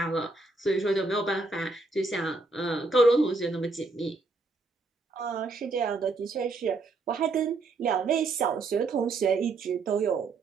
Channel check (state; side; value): quieter; left; 3.5 dB